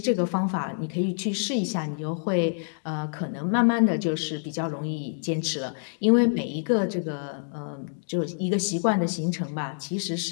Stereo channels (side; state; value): right; silent; digital silence